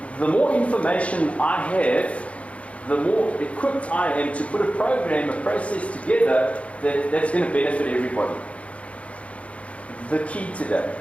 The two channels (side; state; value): right; late; 0.063 ms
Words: the more information I have, the more equipped I am to put a program, a process together that's going to benefit everybody. The key today